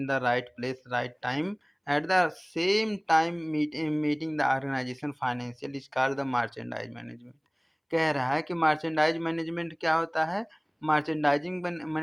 the right place right time at the same time meeting the organisation financial is called the merchandise management. कह रहा है कि merchandise management क्या होता है। Merchandising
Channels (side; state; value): both; identical; correlation 1.00